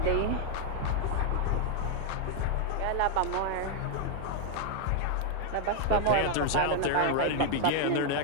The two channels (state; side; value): different; both; correlation 0.00